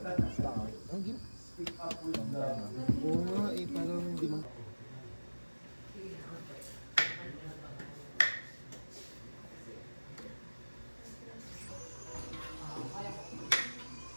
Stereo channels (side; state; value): both; inverted; correlation -1.00